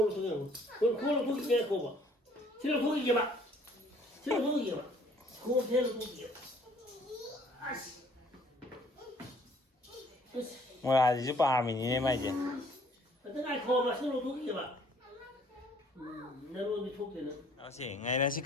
속여 그걸로 고기 빼 그거 봐 싫어 고기 이게 봐 싫어 고기 이게 봐 그거 배로 고기 이게 봐 아씨 뭐야 이제 밤이네 말이지 어떤 날 그거 봐 싫어 고기 이게 봐 내가 어디 속대는 à chị ngày nay chị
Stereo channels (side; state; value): both; normal; correlation 0.59